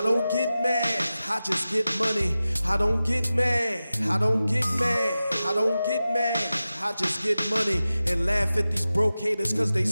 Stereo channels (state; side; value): inverted; both; correlation -0.95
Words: don't get mad, I just get money. I don't get mad, I don't get mad. I don't get mad, I just get money and laugh at these broke haters cause they